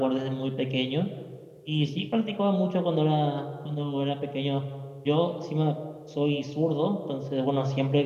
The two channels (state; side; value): identical; both; correlation 1.00